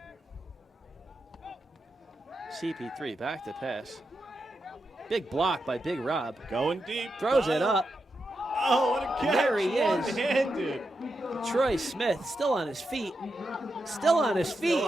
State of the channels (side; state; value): both; normal; correlation 0.86